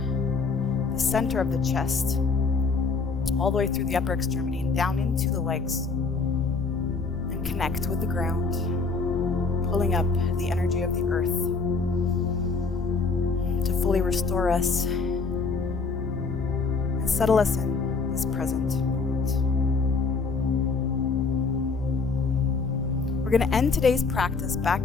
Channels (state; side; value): quieter; right; 4.5 dB